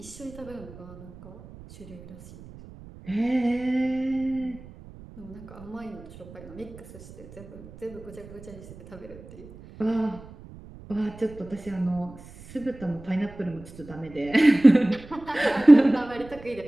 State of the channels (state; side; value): noise; right; rumble, 18 dB below the sound